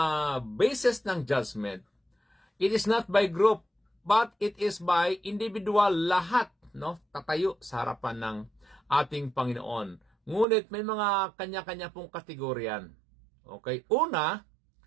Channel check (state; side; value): drops out; left; at 10.5 s